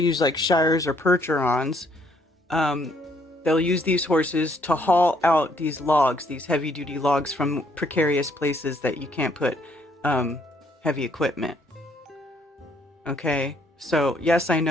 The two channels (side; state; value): both; normal; correlation 0.67